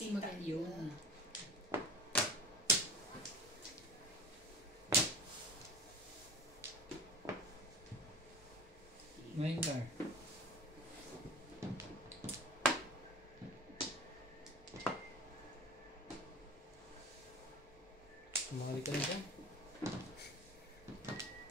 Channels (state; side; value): normal; both; correlation 0.38